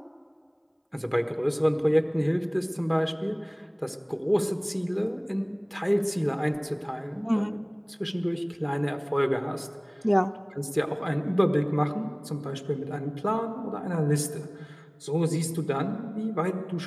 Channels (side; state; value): both; identical; correlation 1.00